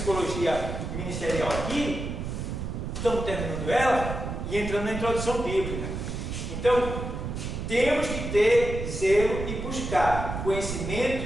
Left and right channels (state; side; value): noise; right; rumble, 5 dB below the sound